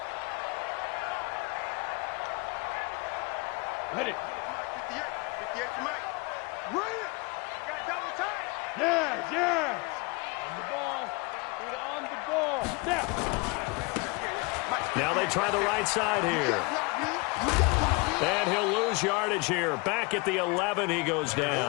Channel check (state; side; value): quieter; right; 27.9 dB